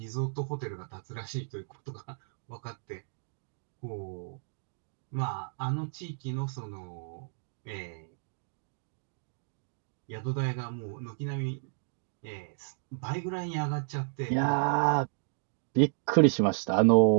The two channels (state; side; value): silent; left; digital silence